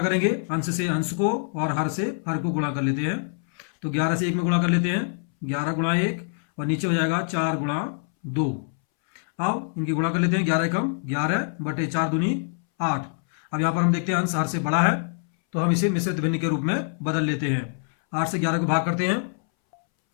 करेंगे, अंश से अंश को और हर से हर को गुणा कर लेते हैं। तो 11 से 1 में गुणा कर लेते हैं, 11 गुणा 1 और नीचे हो जाएगा 4 गुणा 2। अब इनकी गुणा कर लेते हैं, 11 एकम 11 बटे 4 दूनी 8। अब यहाँ पर हम देखते हैं अंश हर से बड़ा है, तो हम इसे मिश्रित भिन्न के रूप में बदल लेते हैं। 8 से 11 को भाग करते हैं।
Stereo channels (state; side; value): silent; right; 62 dB below the other